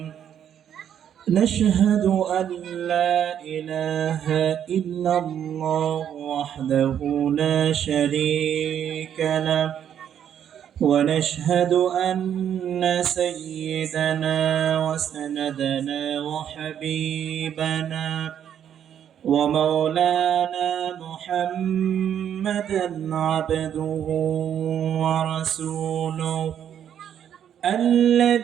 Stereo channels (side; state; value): left; quieter; 9.4 dB